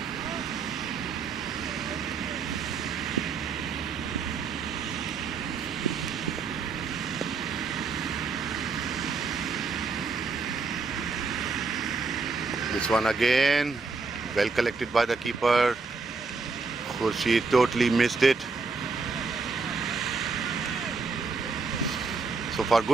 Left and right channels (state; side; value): quieter; left; 4.4 dB